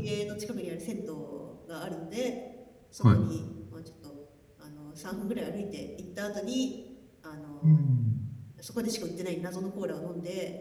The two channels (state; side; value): identical; both; correlation 1.00